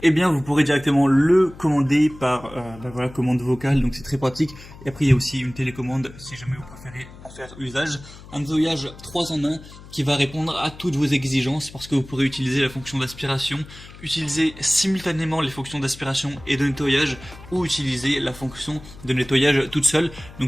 eh bien vous pourrez directement le commander par commande vocale. Donc c'est très pratique. Et après il y a aussi une télécommande si jamais vous préférez en faire usage. Un nettoyage 3 en 1 qui va répondre à toutes vos exigences parce que vous pourrez utiliser la fonction d'aspiration, utiliser simultanément les fonctions d'aspiration et de nettoyage ou utiliser la fonction de nettoyage toute seule.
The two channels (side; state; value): left; noise; hum, 18 dB below the sound